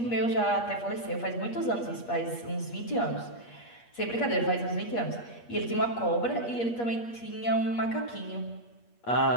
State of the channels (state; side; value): late; right; 8.5 ms